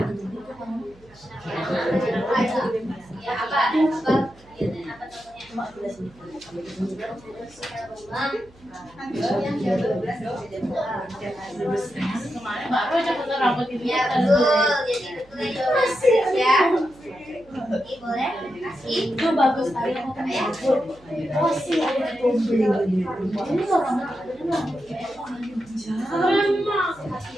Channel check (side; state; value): right; noise; hum, 26 dB below the sound